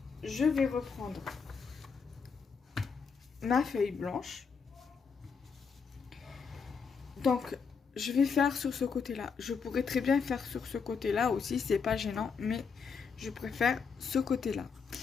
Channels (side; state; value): right; quieter; 5.7 dB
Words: Je vais reprendre ma feuille blanche. Donc, je vais faire sur ce côté-là. Je pourrais très bien faire sur ce côté-là aussi, c'est pas gênant, mais je préfère ce côté-là.